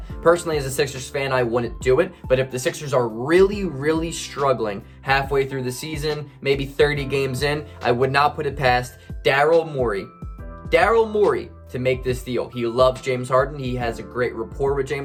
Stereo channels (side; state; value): both; identical; correlation 1.00